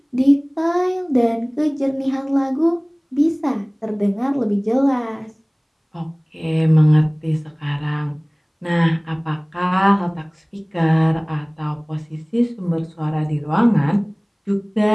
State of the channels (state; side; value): identical; both; correlation 1.00